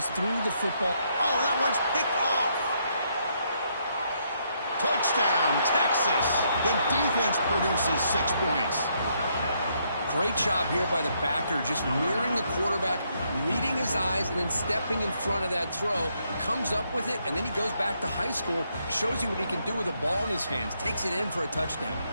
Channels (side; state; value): both; inverted; correlation -0.74